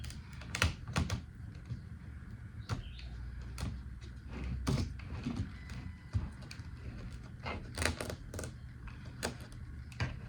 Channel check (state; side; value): identical; both; correlation 1.00